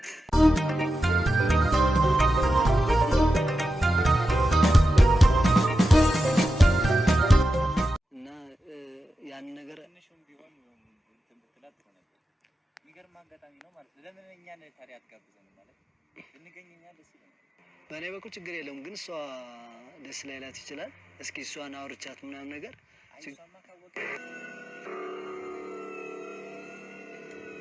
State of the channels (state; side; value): normal; both; correlation 0.90